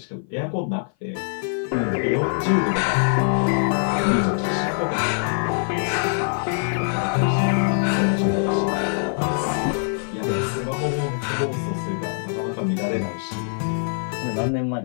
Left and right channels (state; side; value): silent; right; 56 dB below the other